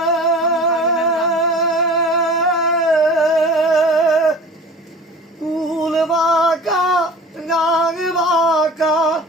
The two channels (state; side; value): normal; both; correlation 0.40